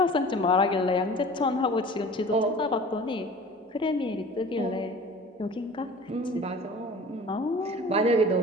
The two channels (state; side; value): normal; both; correlation 0.43